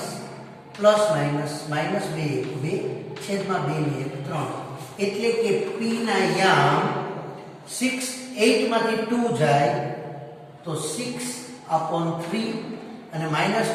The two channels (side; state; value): both; identical; correlation 1.00